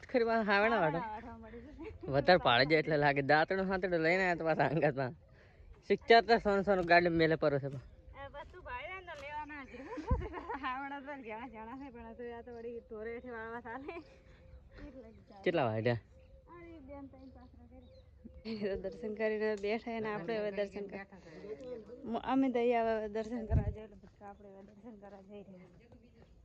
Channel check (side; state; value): both; identical; correlation 1.00